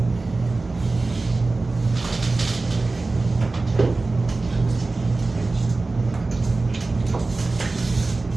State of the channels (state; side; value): quieter; left; 3.4 dB